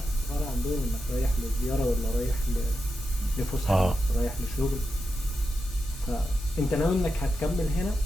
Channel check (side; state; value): both; normal; correlation 0.88